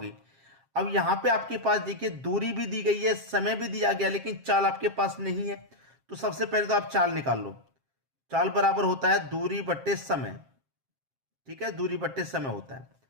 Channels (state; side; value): late; left; 7.5 ms